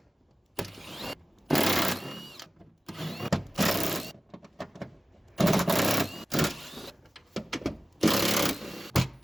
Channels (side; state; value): both; normal; correlation 0.96